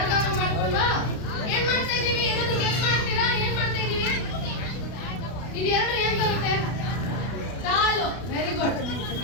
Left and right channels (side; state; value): right; late; 32 ms